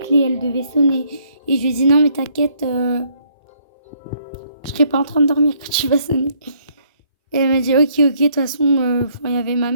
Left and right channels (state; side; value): inverted; both; correlation -0.67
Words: elle devait sonner. Et je lui ai dit, non, mais t'inquiète, je serai pas en train de dormir quand tu vas sonner. Et elle m'a dit, ok, de toute façon, il y avait ma